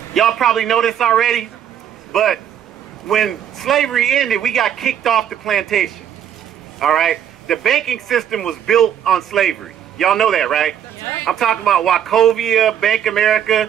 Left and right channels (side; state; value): left; quieter; 9.5 dB